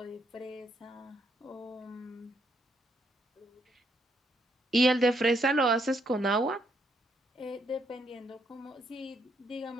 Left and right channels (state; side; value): normal; both; correlation 0.73